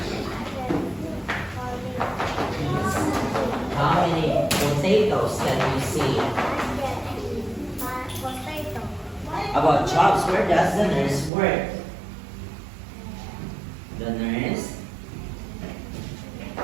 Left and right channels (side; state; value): left; drops out; at 11.3 s